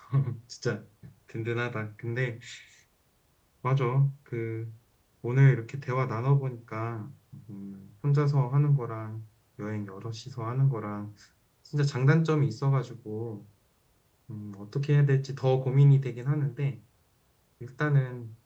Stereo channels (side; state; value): both; identical; correlation 1.00